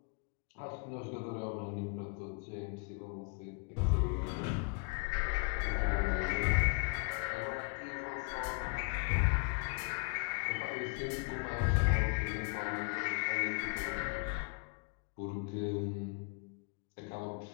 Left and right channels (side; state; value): right; quieter; 36.2 dB